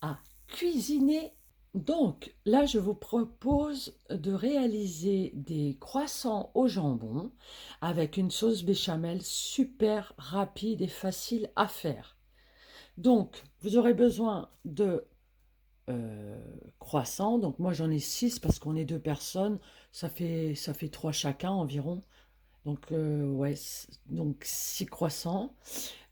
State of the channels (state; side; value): identical; both; correlation 1.00